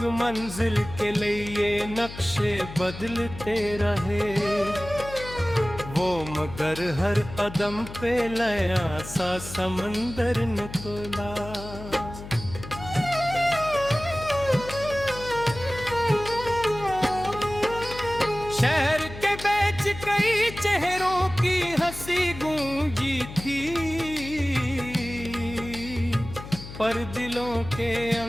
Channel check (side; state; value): left; noise; hum, 12 dB below the sound